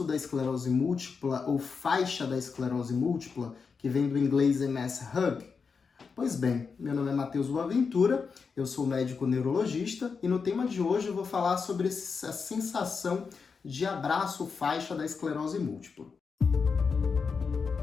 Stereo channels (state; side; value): quieter; right; 5.4 dB